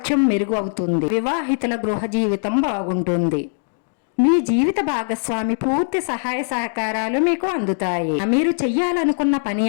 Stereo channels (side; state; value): right; silent; digital silence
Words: మెరుగు అవుతుంది. వివాహితుల గృహ జీవితం బాగుంటుంది. మీ జీవిత భాగస్వామి పూర్తి సహాయ సహకారాలు మీకు అందుతాయి. మీరు చెయ్యాలనుకున్న పని